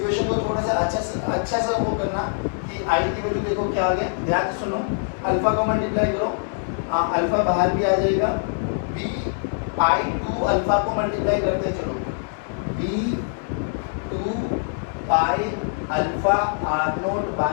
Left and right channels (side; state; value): right; silent; digital silence